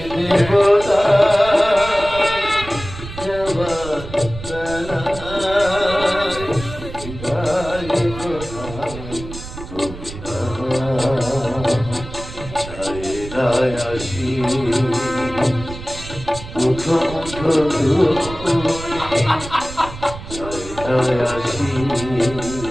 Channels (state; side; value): noise; right; rumble, 12 dB below the sound